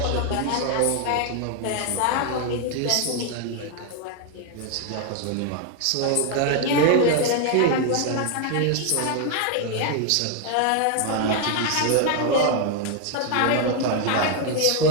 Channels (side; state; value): both; different; correlation 0.01